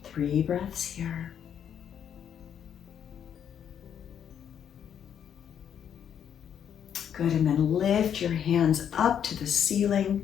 Three breaths here. Good, and then lift your hands up to the ceiling,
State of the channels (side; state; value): right; quieter; 8.8 dB